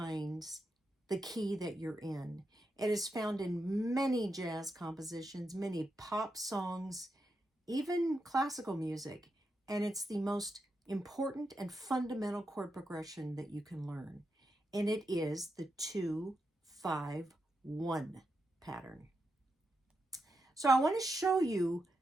the key that you're in. It is found in many jazz compositions, many pop songs, even classical music, and it's the most important and fundamental chord progression that you can learn. And it is the 2-5-1 pattern. So I want to show you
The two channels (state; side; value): normal; both; correlation 0.86